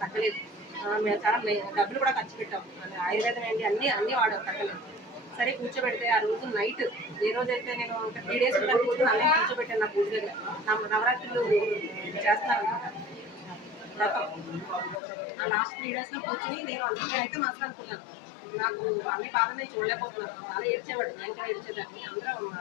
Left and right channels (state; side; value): drops out; right; at 15.0 s